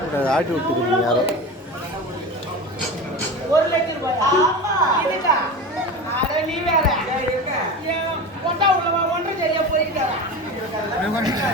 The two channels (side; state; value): both; normal; correlation 0.29